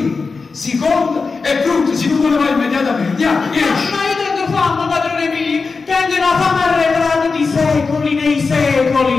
seconda e frutta, si tu ne vai immediatamente. Andiamo, esci. Ma io tengo fame, padrone mio, tengo una fame arretrata di secoli nei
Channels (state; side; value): quieter; right; 4.4 dB